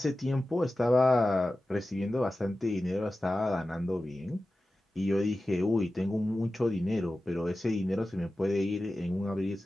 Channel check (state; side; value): normal; both; correlation 0.95